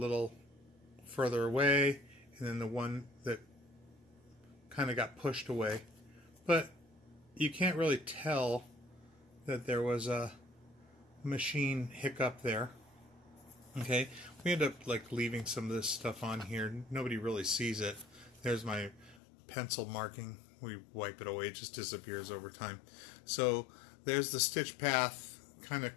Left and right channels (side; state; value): right; drops out; at 19.2 s